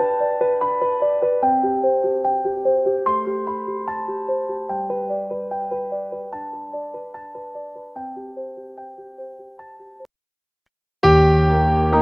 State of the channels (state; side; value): identical; both; correlation 1.00